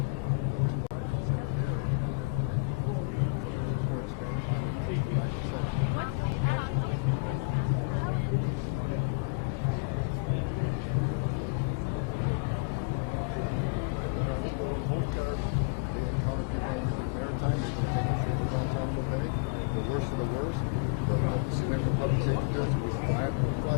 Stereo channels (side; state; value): right; quieter; 27.6 dB